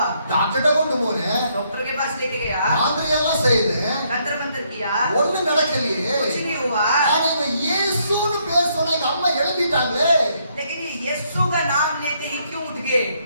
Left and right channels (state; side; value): inverted; both; correlation -0.72